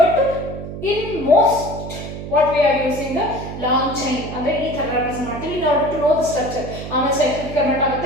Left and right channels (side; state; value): right; noise; hum, 9 dB below the sound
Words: But in most what we are using the long chain ಅಂದ್ರೆ ಈ ತರ ರೆಪ್ರೆಸೆಂಟ್ ಮಾಡ್ತೀವಿ in order to know the structure. ಆಮೇಲೆ ಸೈಕ್ಲಿಕ್ ಕನ್ವರ್ಟ್